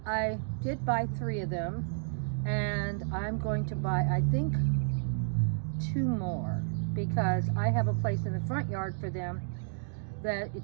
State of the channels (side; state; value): left; silent; digital silence